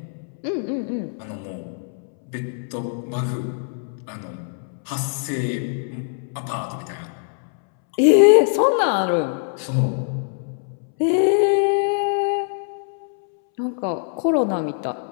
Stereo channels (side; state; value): right; silent; 64 dB below the other